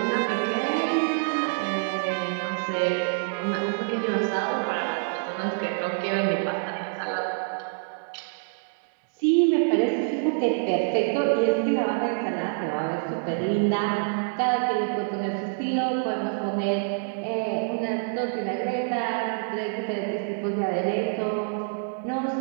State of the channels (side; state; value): left; silent; digital silence